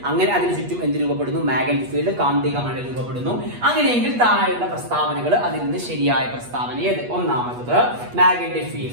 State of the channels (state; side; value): late; left; 8.3 ms